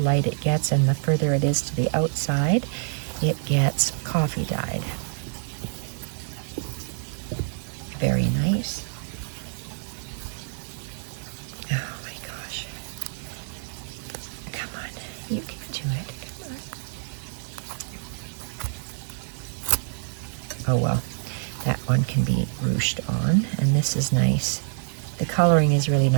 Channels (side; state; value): left; silent; digital silence